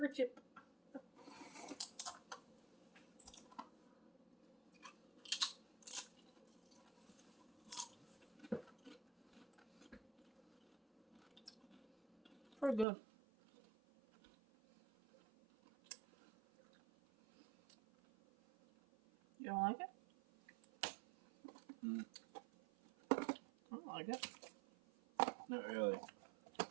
chip. Pretty good. You don't like it? I don't like it. Not really.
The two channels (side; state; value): left; drops out; at 12.9 s